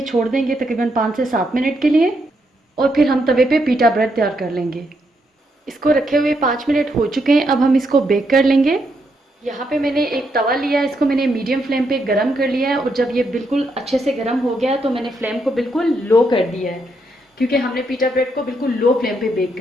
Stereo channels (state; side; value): normal; both; correlation 0.78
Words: छोड़ देंगे तकरीबन 5 से 7 मिनट के लिए। और फिर हम तवे पे पीटा ब्रेड तैयार कर लेंगे। इसको रखे हुए 5 मिनट हो चुके हैं। अब हम इसको बेक कर लेंगे। यहाँ पे मैंने एक तवा लिया है, इसको मैंने मीडियम फ्लेम पे गरम कर लिया है। और जब ये बिल्कुल अच्छे से गरम हो गया है तो मैंने फ्लेम को बिल्कुल लो कर दिया है, क्योंकि हमने पीटा ब्रेड को बिल्कुल लो फ्लेम पे बेक